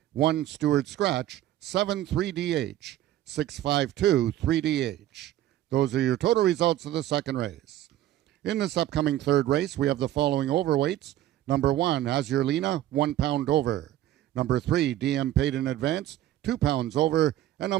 1 steward scratch, 7 3DH, 652 3DH. Those are your total results of the second race. In this upcoming third race, we have the following overweights. Number 1, Azurlina, 1 pound over. Number 3, DM Paid in Advance, 2 pounds over. And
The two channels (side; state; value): left; quieter; 13.4 dB